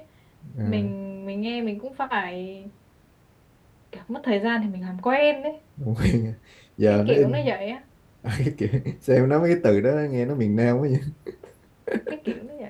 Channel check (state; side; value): identical; both; correlation 1.00